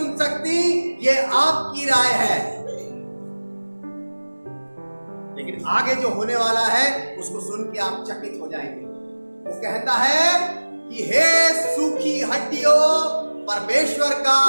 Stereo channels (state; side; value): inverted; both; correlation -1.00